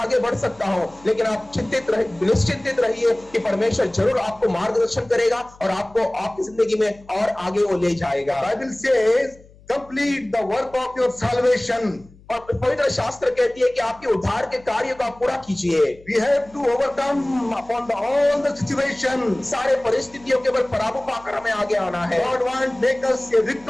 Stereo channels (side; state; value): left; noise; hum, 25 dB below the sound